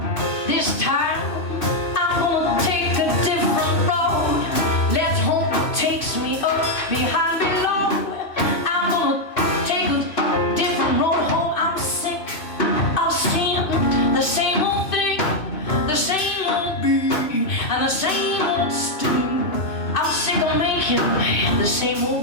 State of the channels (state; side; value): late; right; 2.6 ms